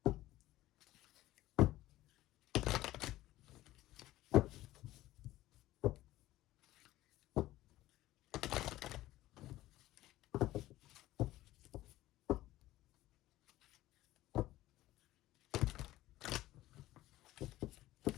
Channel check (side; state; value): right; quieter; 16.0 dB